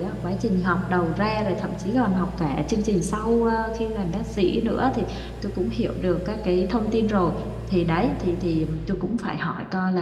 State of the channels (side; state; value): both; identical; correlation 1.00